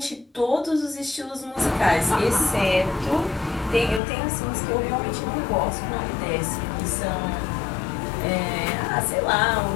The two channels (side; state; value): right; drops out; at 4.0 s